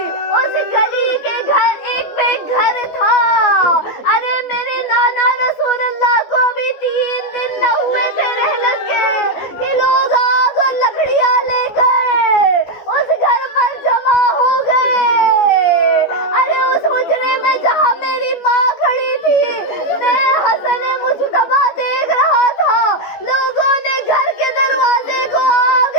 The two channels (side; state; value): right; late; 14 ms